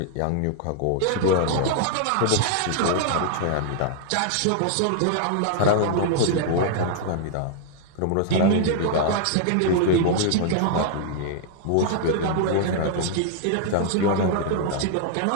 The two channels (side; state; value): both; different; correlation -0.01